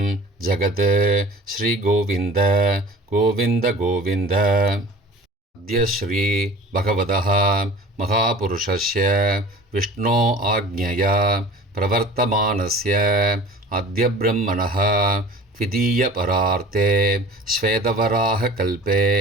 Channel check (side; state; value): both; normal; correlation 0.42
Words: जगत्. श्रीगोविन्द गोविन्द गोविन्द. अद्य श्री भगवतः महापुरुषस्य विष्णो आज्ञया प्रवर्तमानस्य अद्य ब्रह्मणः द्वितीयपरार्थे श्वेतवराहकल्पे